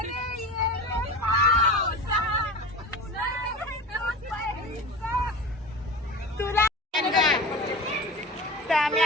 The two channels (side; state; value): both; normal; correlation 0.32